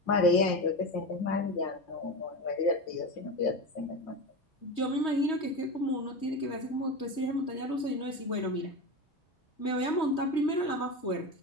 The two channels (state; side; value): late; right; 3.2 ms